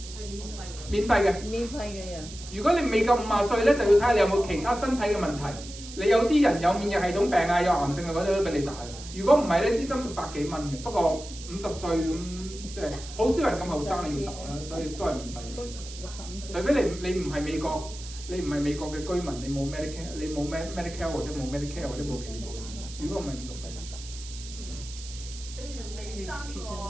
係免費嘅。免費嘅人。如果你未夠50歲咧，就要睇下你有冇其他身體嘅問題。你有啲人有免疫系統病啊、有癌症啊嗰啲都俾你打嘅。如果唔係咧，支針就100幾蚊嘅。不過50歲咁即係好少人咁後生要打啦，所以都係免費嘅。除非你唔係美國。你唔係美國嘅居民，你冇 Medicare 或者冇 Medicare 或者冇其他保險。如果唔係50歲你哋未生過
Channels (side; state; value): right; noise; hiss, 14 dB below the sound